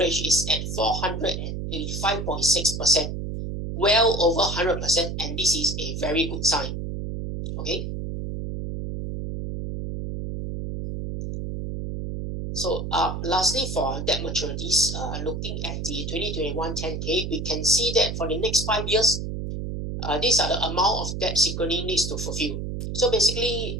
is at 485.6%, well over 100%, and this is a very good sign. Okay. So lastly, for debt maturities, looking at the 2021 10K, we can see that for the next 5 years, these are the amount of debt Synchrony needs to fulfill. So basically,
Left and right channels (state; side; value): noise; right; hum, 5 dB below the sound